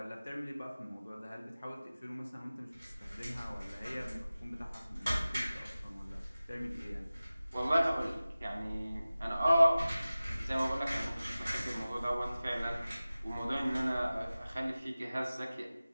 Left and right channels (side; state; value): both; inverted; correlation -0.97